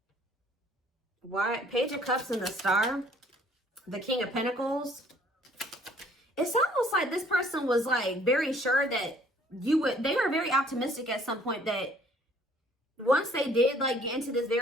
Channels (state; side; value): normal; both; correlation 0.59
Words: why? Page of Cups and the Star. The King of Pentacles. It's almost like this person was like very sure that you would, they were very optimistic at some point that once they did like get into this